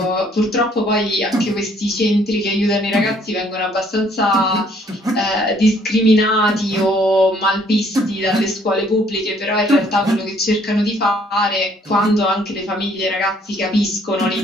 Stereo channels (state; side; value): normal; both; correlation 0.63